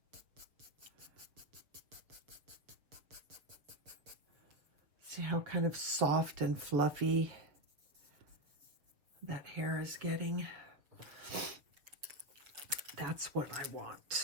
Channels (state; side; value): late; left; 6.7 ms